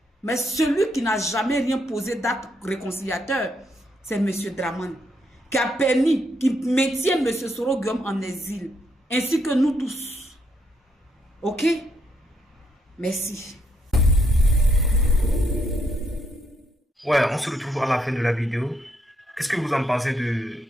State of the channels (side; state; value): both; normal; correlation 0.76